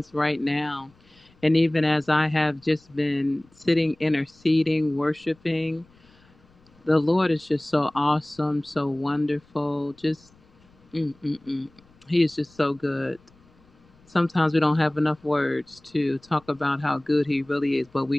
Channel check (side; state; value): left; noise; rumble, 30 dB below the sound